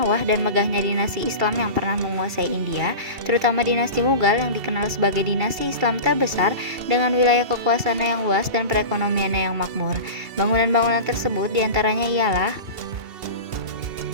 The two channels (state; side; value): late; left; 2.7 ms